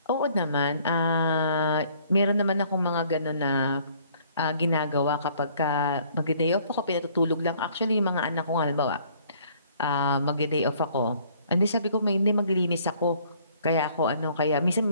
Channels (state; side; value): inverted; both; correlation -0.60